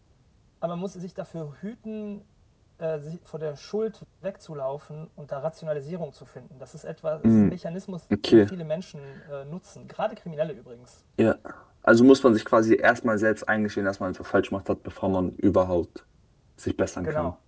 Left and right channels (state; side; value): identical; both; correlation 1.00